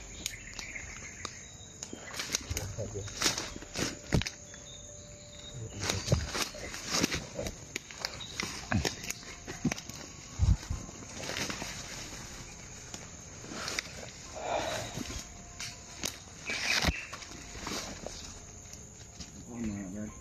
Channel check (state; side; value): identical; both; correlation 1.00